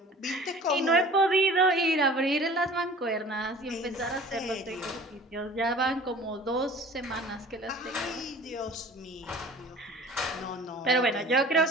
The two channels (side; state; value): both; normal; correlation 0.45